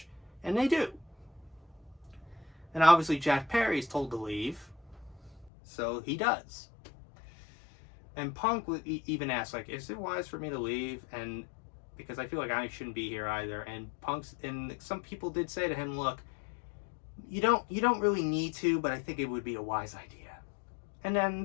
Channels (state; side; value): drops out; right; at 5.5 s